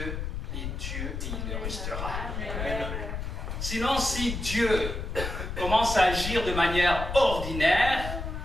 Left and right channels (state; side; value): noise; left; rumble, 5 dB below the sound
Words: est Dieu et il le restera. Amen. Sinon, si Dieu commence à agir de manière ordinaire,